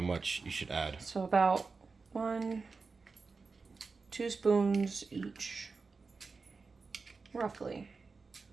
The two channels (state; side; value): quieter; left; 4.4 dB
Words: you should add. So about 2 spoons each, roughly.